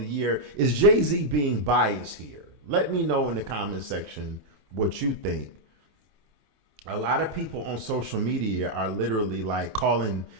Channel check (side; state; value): left; late; 27 ms